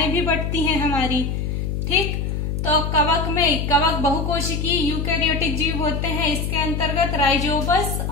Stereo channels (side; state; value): left; noise; hum, 2 dB below the sound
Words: भी बढ़ती हैं हमारी। ठीक, तो कवक बहुकोशिकीय यूकैरियोटिक जीव होते हैं। इसके अंतर्गत राइजोबस